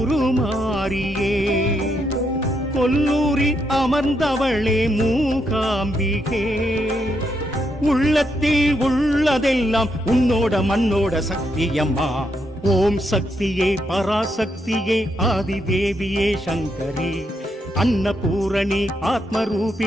கொல்லூரில் அமர்ந்தவளே மூகாம்பிகே உள்ளத்தில் உள்ளதெல்லாம் உன்னோட மண்ணோட சக்தியம்மா ஓம் சக்தியே பராசக்தியே ஆதிதேவியே சங்கரி அன்னபூரணி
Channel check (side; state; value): both; normal; correlation 0.79